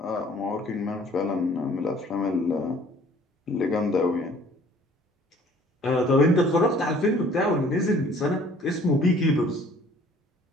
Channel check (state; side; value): normal; both; correlation 0.55